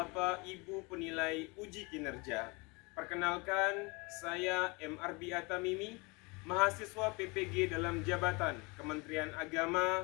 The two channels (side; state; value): right; quieter; 27.9 dB